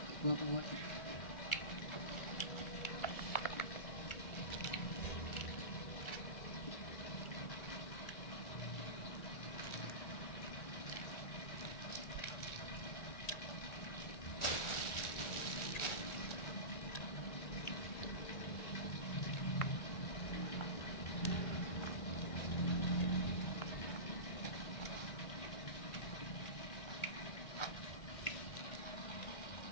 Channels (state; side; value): late; right; 1.4 ms